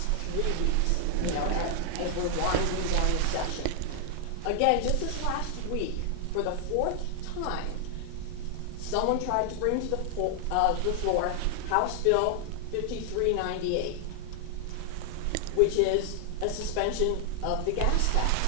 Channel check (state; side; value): different; both; correlation 0.00